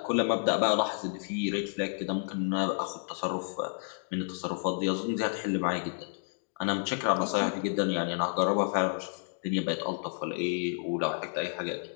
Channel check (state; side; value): silent; right; digital silence